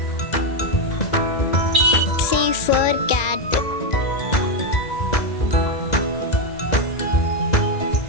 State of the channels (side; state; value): right; late; 2.3 ms